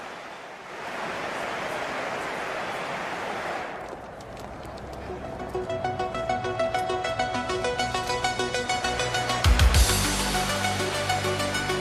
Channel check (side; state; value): both; identical; correlation 1.00